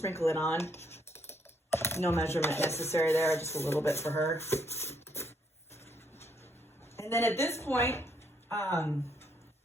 it on. No measurement necessary there, just a little bit for her. And then at this point,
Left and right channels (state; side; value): normal; both; correlation 0.72